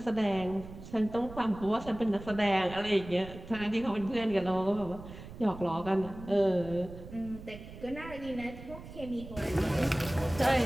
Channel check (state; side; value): noise; right; rumble, 14 dB below the sound